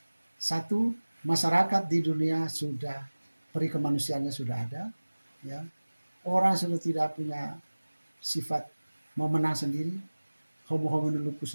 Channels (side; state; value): both; inverted; correlation -1.00